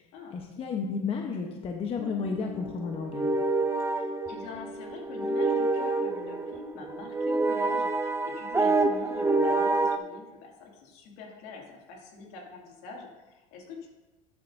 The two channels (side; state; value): both; normal; correlation 0.65